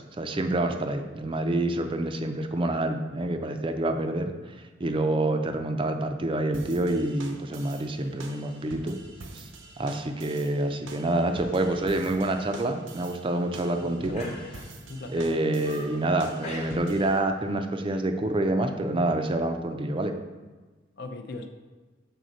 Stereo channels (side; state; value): both; normal; correlation 0.57